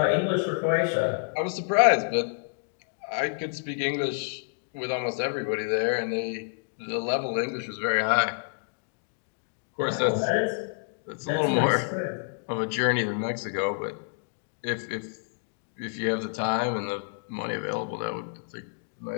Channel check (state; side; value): silent; right; digital silence